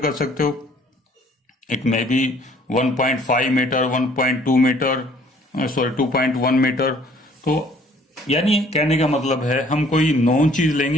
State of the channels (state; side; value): normal; both; correlation 0.58